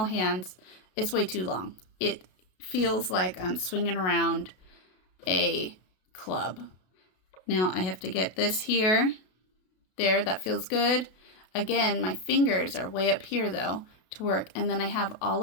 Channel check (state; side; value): late; right; 32 ms